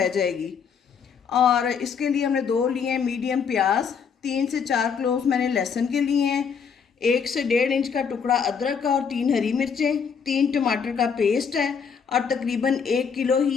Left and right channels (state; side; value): quieter; right; 6.5 dB